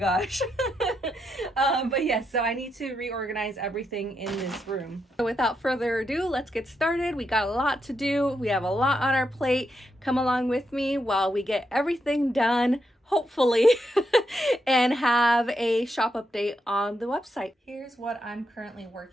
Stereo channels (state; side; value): normal; both; correlation 0.82